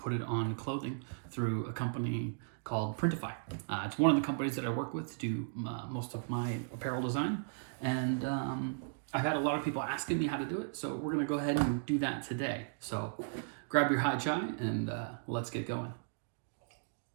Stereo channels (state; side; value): silent; left; digital silence